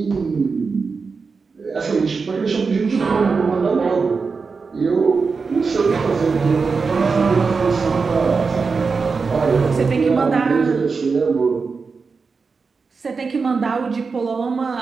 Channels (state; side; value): quieter; left; 4.8 dB